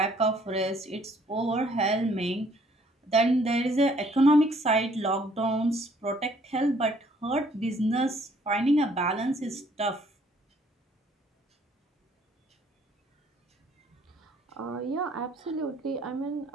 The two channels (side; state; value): both; normal; correlation 0.62